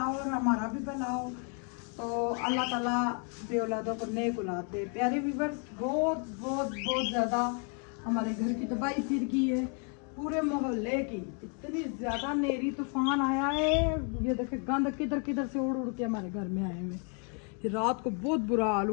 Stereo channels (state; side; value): quieter; right; 39.8 dB